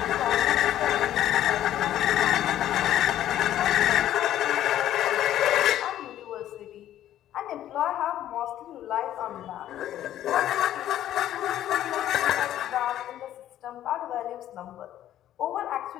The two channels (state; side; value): quieter; right; 12.2 dB